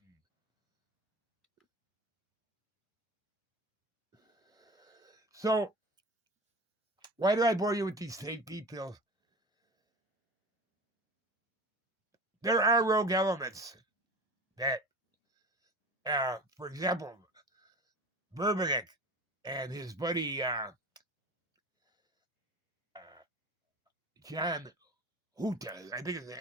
So, why do I bore you with these fake details? There are rogue elements that, for example, Verbenek and his buddy John Huta, I think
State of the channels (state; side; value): normal; both; correlation 0.34